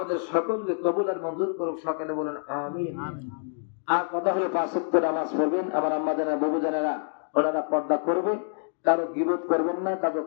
সকলকে কবুল আর মঞ্জুর করুক, সকলে বলেন আমিন। আর কথা হলো 5 ওয়াক্ত নামাজ পড়বেন। আমার আম্মা জানেরা, বাবু জানেরা, ওনারা পর্দা করবে, কারো গীবত করবেন না, কারো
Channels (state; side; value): silent; right; digital silence